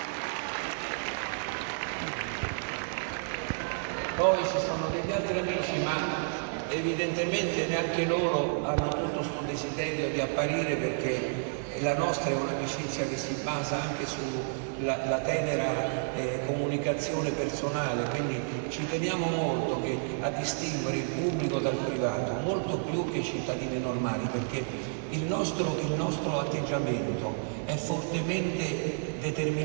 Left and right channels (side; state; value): left; silent; digital silence